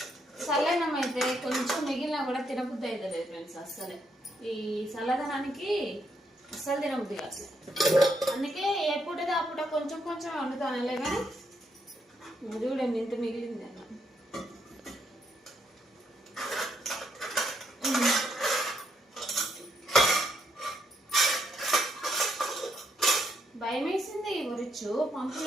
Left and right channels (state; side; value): normal; both; correlation 0.75